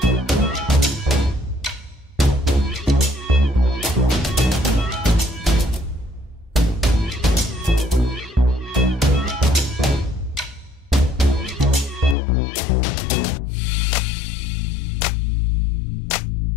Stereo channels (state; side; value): drops out; right; at 12.2 s